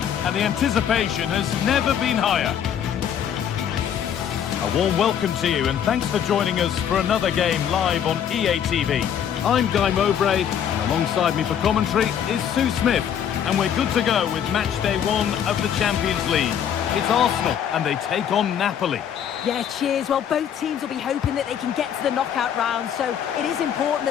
and the anticipation has never been higher. A warm welcome to you and thanks for joining us for another game live on EA TV. I'm Guy Mowbray and alongside me for commentary is Sue Smith, and we're good to go with match day 1 of the Champions League. It's Arsenal and they take on Napoli. Yeah, cheers. Well, both teams will be hoping that they can get to the knockout round, so it is important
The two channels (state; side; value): quieter; right; 9.0 dB